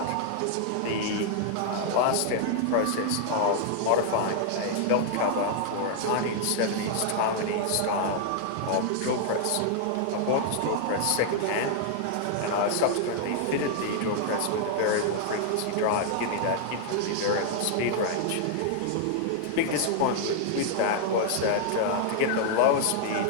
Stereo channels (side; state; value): both; different; correlation -0.01